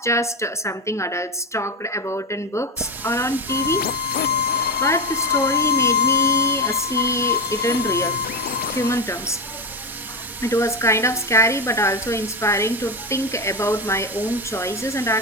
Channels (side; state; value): both; normal; correlation 0.15